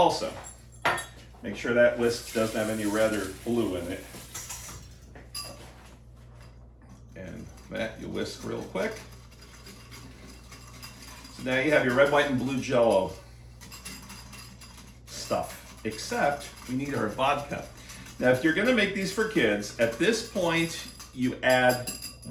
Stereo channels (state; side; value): identical; both; correlation 1.00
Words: Make sure that whisk doesn't have any red or blue in it. And that you whisk real quick. So now you have your red, white, and blue Jell-O stuff. Except we need our vodka. Now, if you're gonna make these for kids, at this point, you add